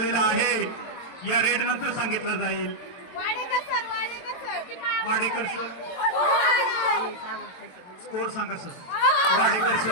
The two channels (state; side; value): late; right; 23 ms